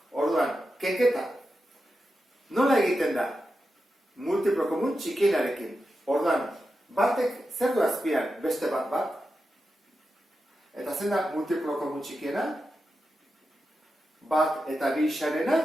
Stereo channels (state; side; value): normal; both; correlation 0.90